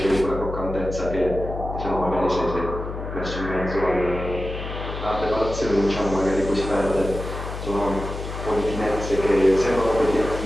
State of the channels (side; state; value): left; noise; hum, 7 dB below the sound